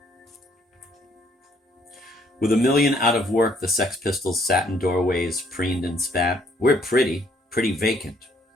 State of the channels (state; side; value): normal; both; correlation 0.66